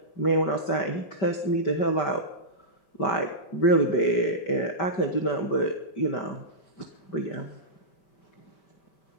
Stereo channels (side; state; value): right; late; 5.1 ms